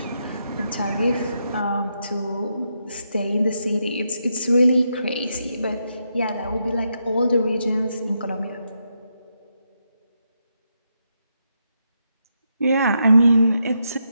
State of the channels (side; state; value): both; inverted; correlation -0.82